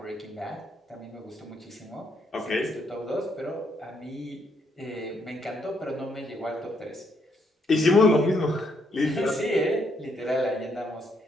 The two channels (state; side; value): normal; both; correlation 0.74